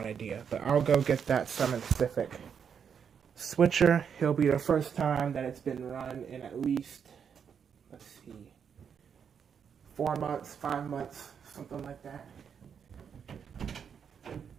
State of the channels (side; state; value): left; quieter; 7.3 dB